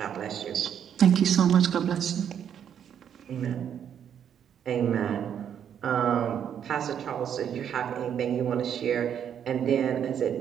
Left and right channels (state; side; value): quieter; left; 8.8 dB